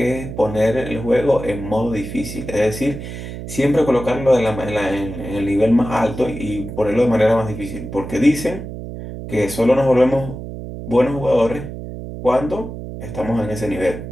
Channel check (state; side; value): noise; right; hum, 9 dB below the sound